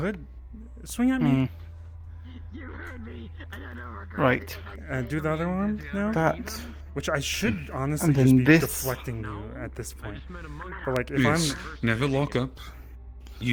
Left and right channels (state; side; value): identical; both; correlation 1.00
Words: swing at me. You heard me, and I don't regret Right. Do the other arm now, That. which I should honestly And then just be this. deflecting you at this I point. just met a monkey. But like, if Yes, I'm never lock up.